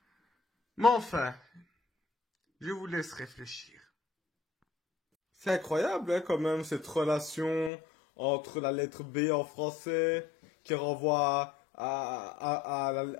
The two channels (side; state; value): right; drops out; at 7.7 s